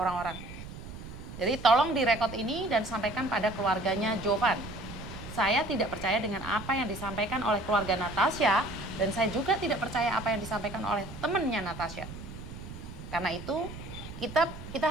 Jadi tolong direkod ini dan sampaikan pada keluarganya Jovan. Saya tidak percaya dengan apa yang disampaikan oleh keluarga Natasha, dan saya juga tidak percaya apa yang disampaikan oleh temannya Natasha. Karena itu kita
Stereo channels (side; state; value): right; noise; rumble, 12 dB below the sound